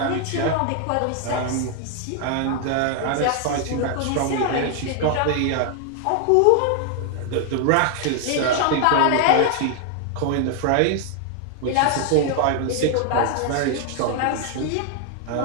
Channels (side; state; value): both; different; correlation 0.00